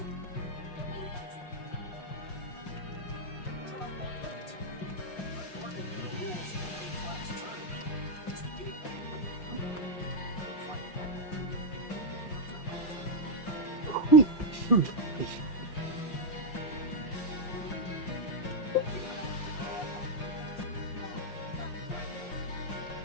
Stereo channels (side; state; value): right; late; 5.6 ms